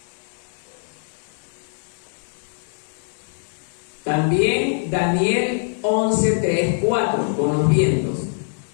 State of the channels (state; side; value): silent; right; digital silence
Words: También Daniel 11:3-4, con los vientos,